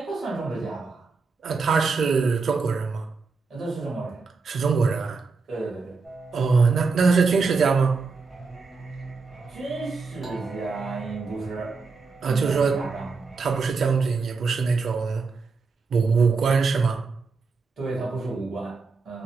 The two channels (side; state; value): left; quieter; 4.5 dB